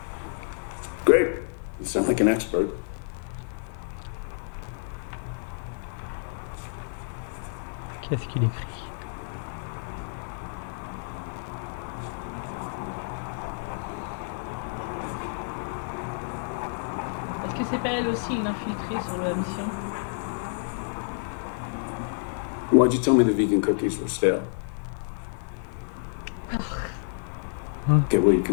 Great. You sound like an expert. Qu'est-ce qu'il écrit? Est-ce que c'est pas elle aussi une infiltrée sur la mission? Why'd you tell me the vegan cookies were stale? Okay, well, you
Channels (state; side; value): silent; right; digital silence